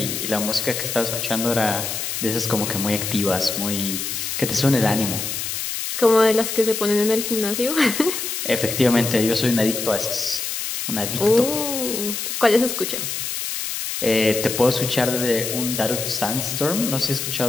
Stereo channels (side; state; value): left; noise; hiss, 4 dB below the sound